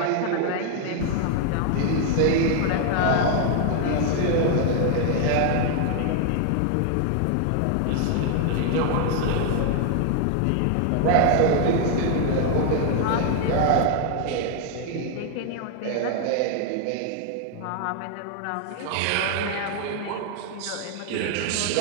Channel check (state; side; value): different; both; correlation 0.00